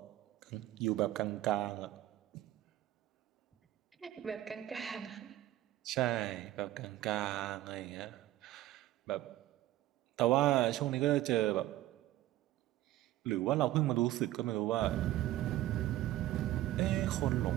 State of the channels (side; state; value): left; quieter; 14.7 dB